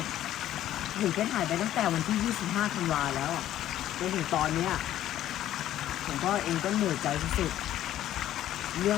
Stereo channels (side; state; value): right; quieter; 12.6 dB